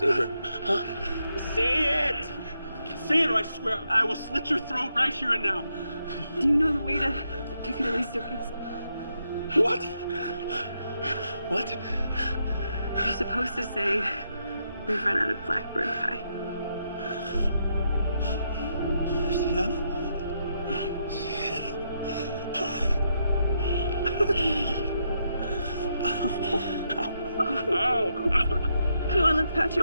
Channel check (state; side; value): inverted; both; correlation -0.80